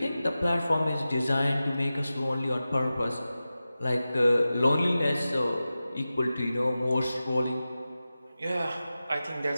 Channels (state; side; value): inverted; both; correlation -0.94